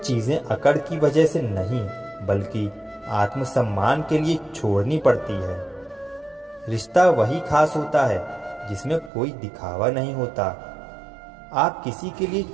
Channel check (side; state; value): left; drops out; at 9.1 s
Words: अकड़ की वजह से नहीं, बल्कि आत्मसम्मान के लिए छोड़नी पड़ती है। रिश्ता वही खास होता है जिसमें कोई दिखावा नहीं होता। आप किसी के लिए